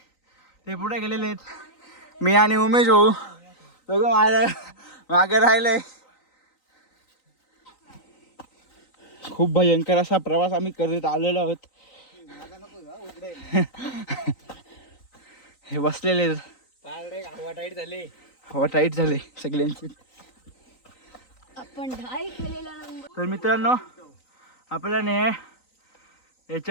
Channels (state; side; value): late; right; 3.9 ms